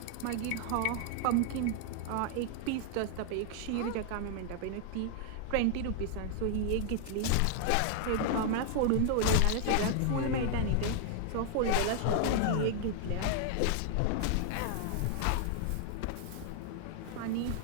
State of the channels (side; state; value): both; different; correlation 0.00